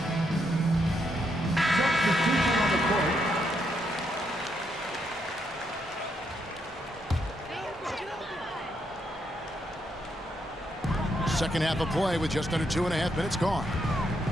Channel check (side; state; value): both; normal; correlation 0.78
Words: Second half of play with just under 2.5 minutes gone.